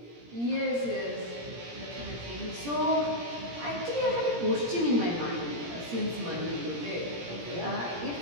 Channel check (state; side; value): late; left; 17 ms